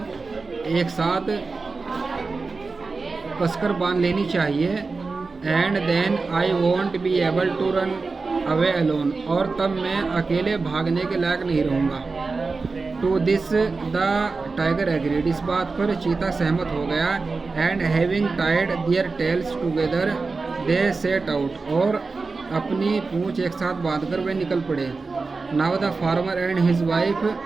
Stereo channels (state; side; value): quieter; left; 4.1 dB